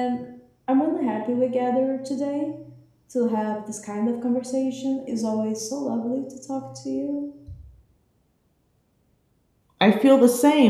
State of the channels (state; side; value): identical; both; correlation 1.00